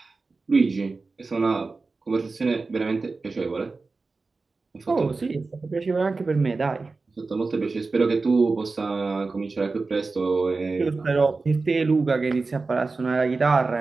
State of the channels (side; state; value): left; quieter; 3.9 dB